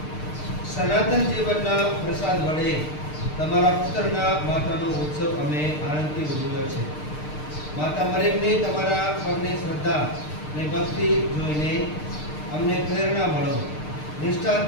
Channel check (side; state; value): right; late; 6.6 ms